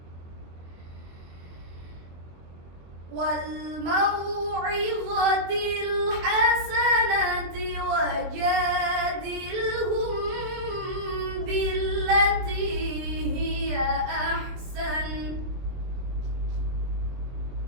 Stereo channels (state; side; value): late; left; 23 ms